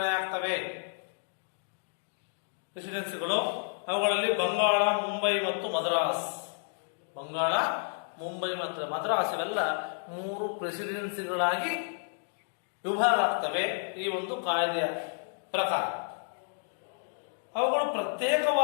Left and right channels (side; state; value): right; silent; digital silence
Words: ಆಗ್ತವೆ. ಪ್ರೆಸಿಡೆನ್ಸಿಗಳು ಅವುಗಳಲ್ಲಿ ಬಂಗಾಳ, ಮುಂಬೈ ಮತ್ತು ಮದ್ರಾಸ್. ಬಂಗಾಳ, ಮುಂಬೈ ಮತ್ತು ಮದ್ರಾಸ್ ಇವೆಲ್ಲ 3 ಪ್ರೆಸಿಡೆನ್ಸಿಗಳಾಗಿ ವಿಭಾಗ ಆಗ್ತವೆ ಈ ಒಂದು ಕಾಯ್ದೆಯ ಪ್ರಕಾರ. ಅವುಗಳು